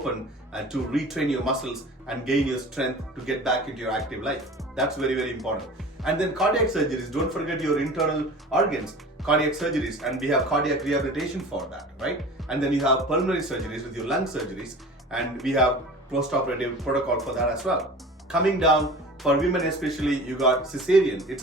and to retrain your muscles and gain your strength to get back into your active life. That's very, very important. And then cardiac surgeries, don't forget your internal organs, cardiac surgeries, and we have cardiac rehabilitation for that, right? And then you have pulmonary surgeries with your lung surgeries, and we have post-operative protocol for that as well. Coming down, for women especially, you got cesarean, it's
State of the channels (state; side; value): normal; both; correlation 0.39